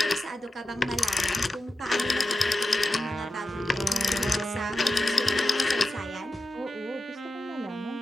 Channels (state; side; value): normal; both; correlation 0.92